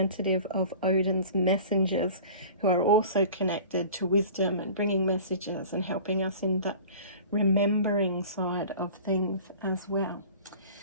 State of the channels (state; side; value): inverted; both; correlation -0.41